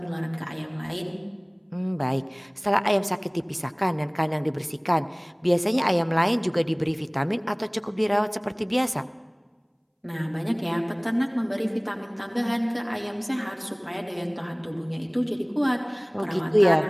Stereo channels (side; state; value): both; identical; correlation 1.00